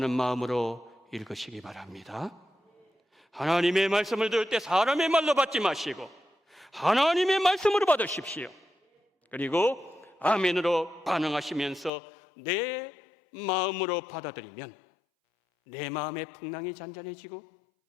마음으로 읽으시기 바랍니다. 하나님의 말씀을 들을 때 사람의 말로 받지 마시고 하나님의 말씀으로 받으십시오. 그리고 아멘으로 반응하시면서 내 마음으로 받아들이면 내 마음의 풍랑이 잔잔해지고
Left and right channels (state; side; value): drops out; right; at 11.9 s